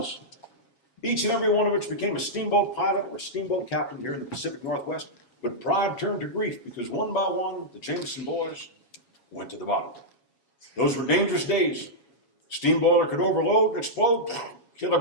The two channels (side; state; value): right; late; 7.3 ms